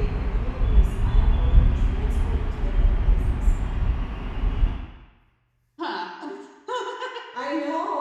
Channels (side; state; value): both; identical; correlation 1.00